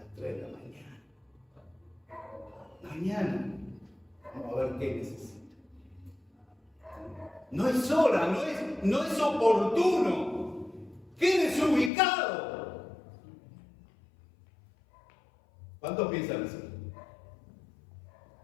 3 de la mañana. Mañana vamos a ver qué necesita. No es hora, no es oportuno. Quédese ubicado. ¿Cuántos piensan así?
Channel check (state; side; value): drops out; right; at 11.9 s